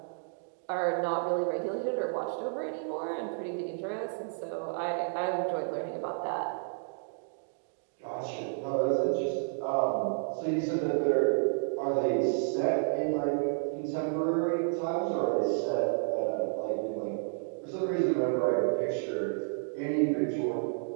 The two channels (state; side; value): silent; left; digital silence